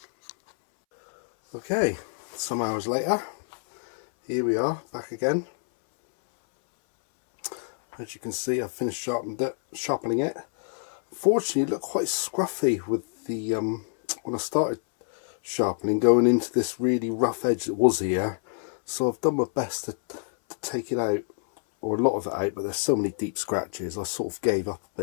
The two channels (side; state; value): right; silent; 60 dB below the other